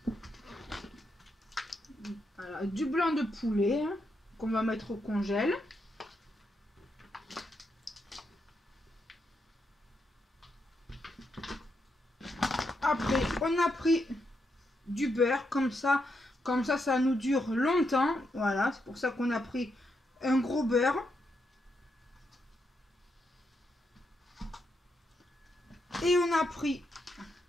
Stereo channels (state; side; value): normal; both; correlation 0.81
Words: Voilà, du blanc de poulet hein, qu'on va mettre au congèle. Après, on a pris du beurre, comme ça, ça nous dure longtemps. Voilà, c'est pour ça qu'on a pris un gros beurre. Et on a pris